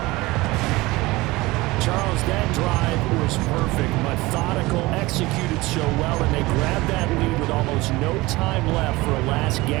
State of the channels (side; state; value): left; quieter; 20.8 dB